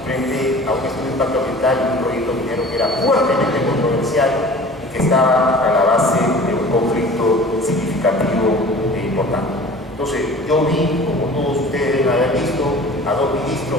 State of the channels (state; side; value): normal; both; correlation 0.43